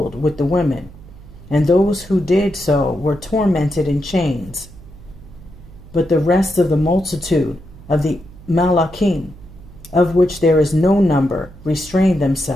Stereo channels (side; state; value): right; noise; hum, 19 dB below the sound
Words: with the women, and those who did so were tormented in chains. But the rest of the multitude of the Malachim, of which there is no number, restrained